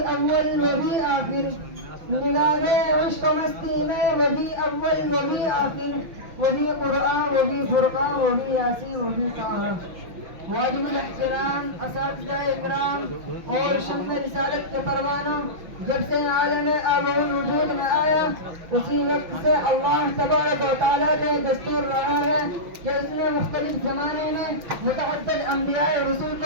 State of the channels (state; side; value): late; left; 5.9 ms